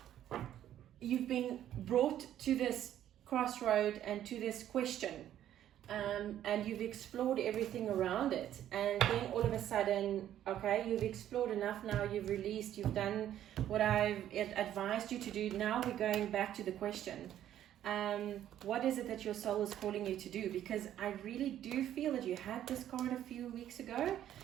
you've been brought to this crossroad and to this question, and you've explored everything around it, and then all of a sudden, okay, you've explored enough now, you've released, you've done what I've advised you to do. Now we're going back to the question. What is it that your soul is calling you to do? Because I really do feel that you had this card a few weeks ago.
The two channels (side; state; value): left; quieter; 11.4 dB